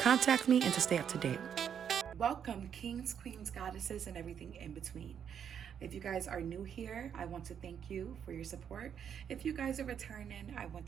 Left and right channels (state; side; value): quieter; left; 8.2 dB